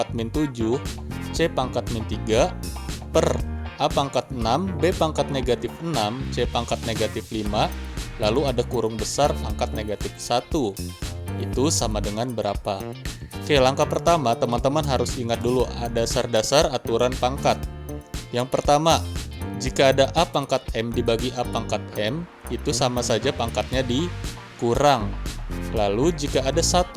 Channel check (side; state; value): both; identical; correlation 1.00